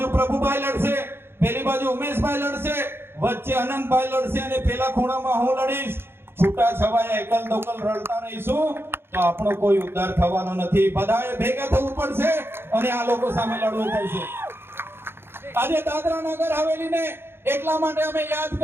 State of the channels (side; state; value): left; late; 0.11 ms